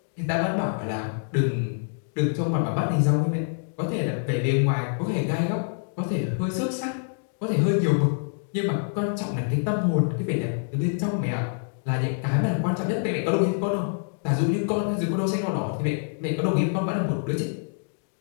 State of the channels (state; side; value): silent; right; digital silence